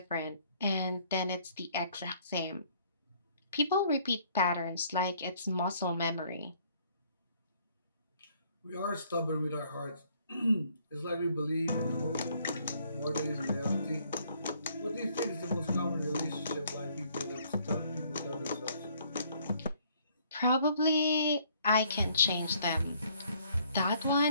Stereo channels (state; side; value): inverted; both; correlation -0.63